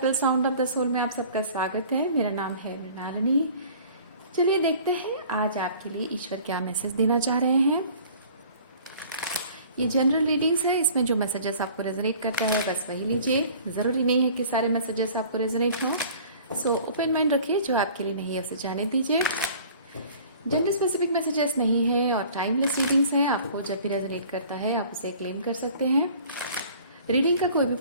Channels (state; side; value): inverted; both; correlation -0.48